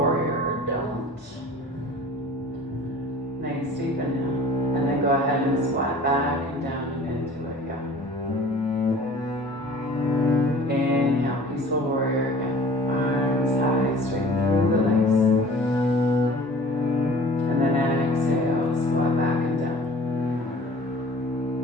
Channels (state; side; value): normal; both; correlation 0.46